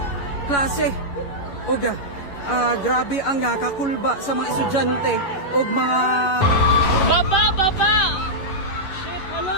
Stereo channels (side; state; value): right; late; 11 ms